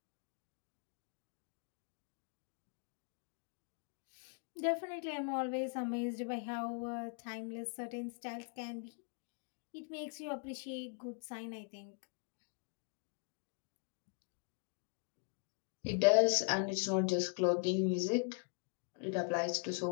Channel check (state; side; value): quieter; right; 39.2 dB